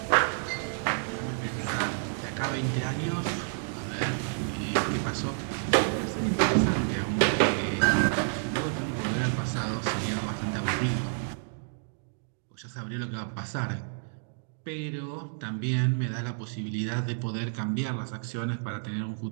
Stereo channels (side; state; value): left; silent; digital silence